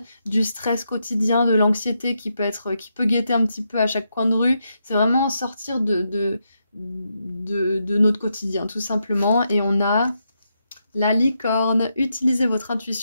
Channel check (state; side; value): inverted; both; correlation -0.83